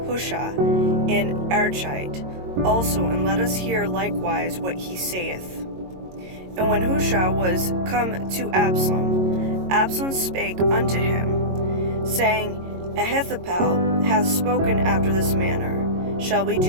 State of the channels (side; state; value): left; late; 22 ms